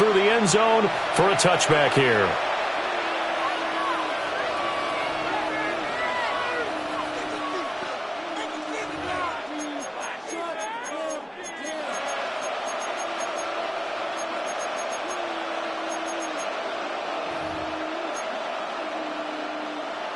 the end zone for a touchback here.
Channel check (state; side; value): identical; both; correlation 1.00